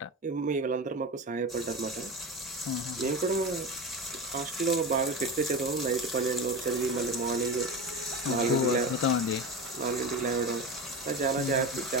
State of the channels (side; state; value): both; normal; correlation 0.25